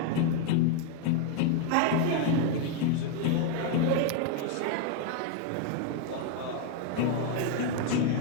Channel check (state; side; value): different; both; correlation 0.01